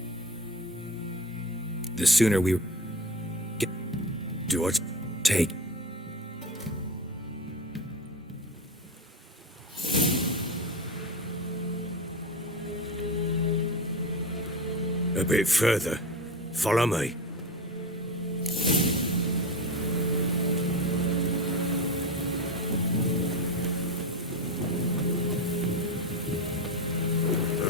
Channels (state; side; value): normal; both; correlation 0.24